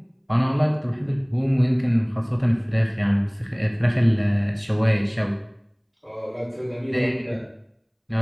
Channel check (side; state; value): both; identical; correlation 1.00